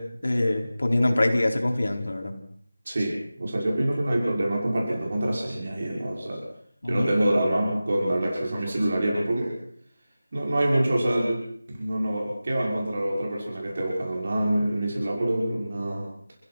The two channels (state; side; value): inverted; both; correlation -0.95